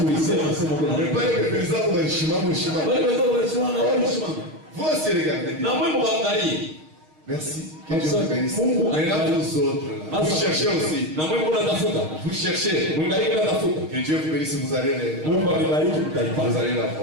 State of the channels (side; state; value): left; late; 6.4 ms